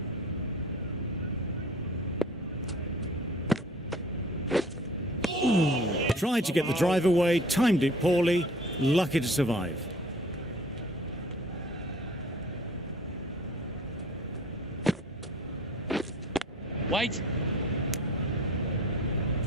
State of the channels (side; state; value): both; normal; correlation 0.48